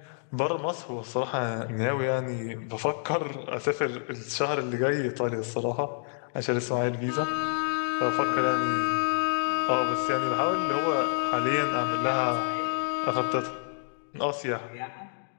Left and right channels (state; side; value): silent; right; digital silence